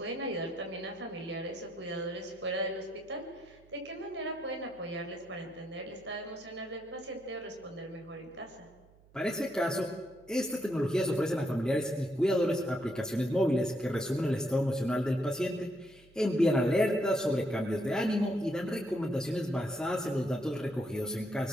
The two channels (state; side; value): noise; right; hum, 27 dB below the sound